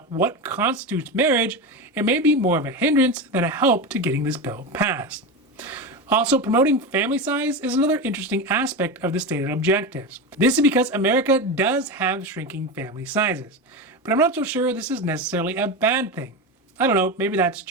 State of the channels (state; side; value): normal; both; correlation 0.20